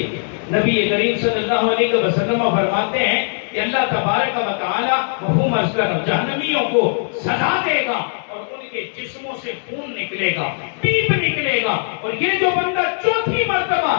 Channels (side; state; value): right; silent; digital silence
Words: نبی کریم صلی اللہ علیہ وسلم فرماتے ہیں کہ اللہ تبارک و تعالی مفہوم عرض کر رہا ہوں، جہنمیوں کو سزا دے گا اور ان کے جسموں سے خون نکلے گا، پیپ نکلے گا، اور یہ جو بندہ چوتھی مرتبہ